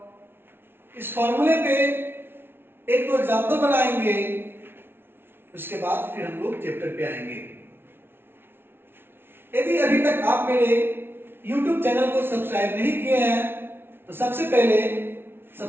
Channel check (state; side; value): late; left; 0.11 ms